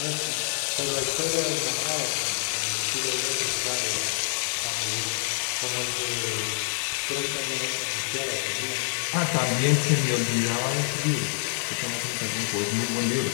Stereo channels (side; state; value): right; silent; digital silence